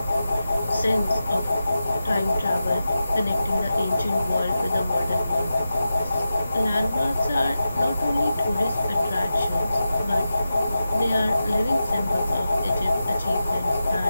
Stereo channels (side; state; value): both; inverted; correlation -0.92